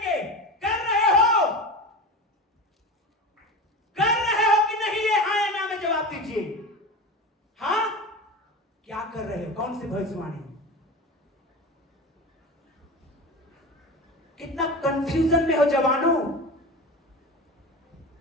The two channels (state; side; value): normal; both; correlation 0.28